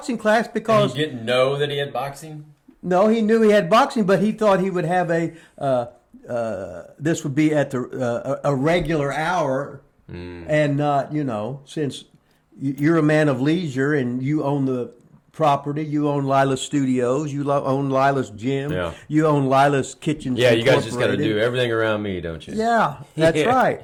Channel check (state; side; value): identical; both; correlation 1.00